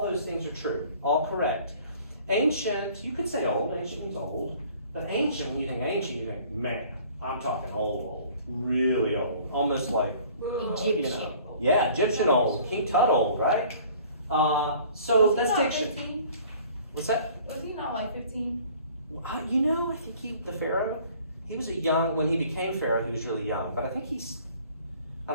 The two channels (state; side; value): inverted; both; correlation -0.52